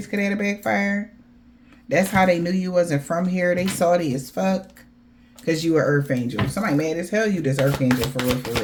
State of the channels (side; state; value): both; identical; correlation 1.00